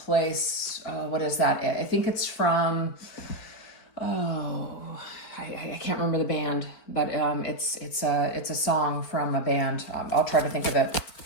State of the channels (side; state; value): right; late; 4.5 ms